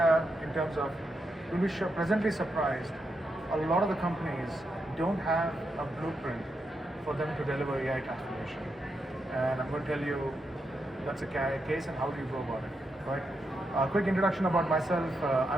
in terms of, you'll be presently surprised, a lot of the companies don't have a blueprint for them to deliver AI transformation. And I'm going to tell you that's a case and how do you go about it, right? A quick introduction about myself.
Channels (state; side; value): normal; both; correlation 0.84